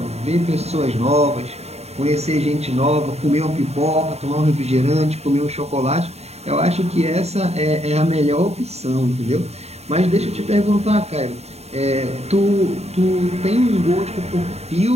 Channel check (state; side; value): late; left; 0.31 ms